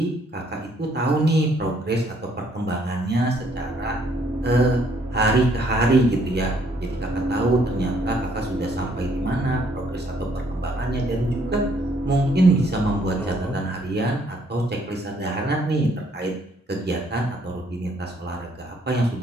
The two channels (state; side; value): normal; both; correlation 0.66